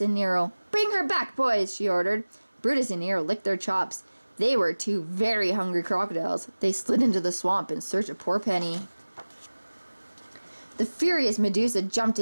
Nero. Bring her back, boys, she ordered. Brutus and Nero licked their chops. They were 2 very hungry crocodiles. They slid into the swamp in search of poor Penny. The furious Medusa jumped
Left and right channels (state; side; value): inverted; both; correlation -1.00